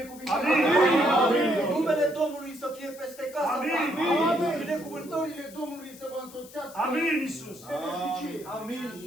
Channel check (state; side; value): noise; left; hiss, 20 dB below the sound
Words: Numele Domnului să fie peste casa ta. Binecuvântările Domnului să vă însoțească. Amin, Iisus. Amin.